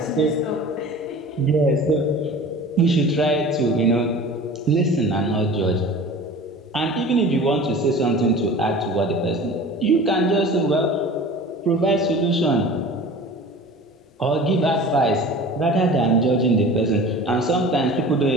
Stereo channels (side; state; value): both; normal; correlation 0.40